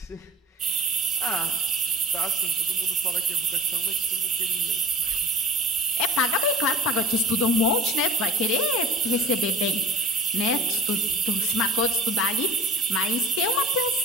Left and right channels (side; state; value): both; normal; correlation 0.41